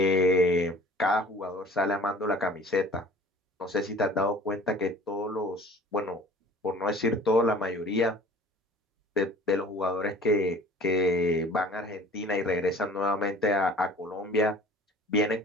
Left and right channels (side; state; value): both; normal; correlation 0.46